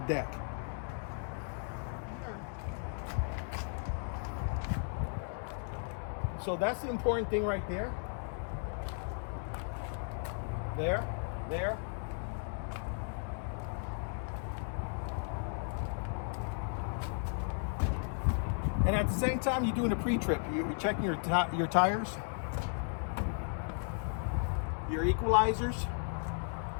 deck. So that's the important thing right there. There. And at the same time, you're doing a pre-trip. You're checking your tires, your equalizers,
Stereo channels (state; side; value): silent; right; 54 dB below the other